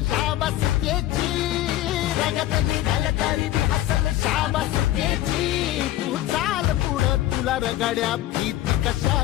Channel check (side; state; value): right; quieter; 14.3 dB